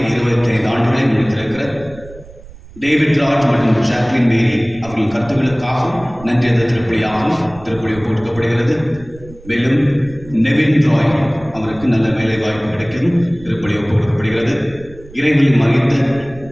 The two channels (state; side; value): noise; right; rumble, 20 dB below the sound